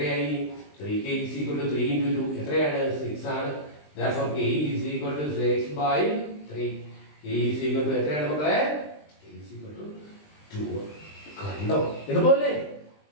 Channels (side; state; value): right; late; 20 ms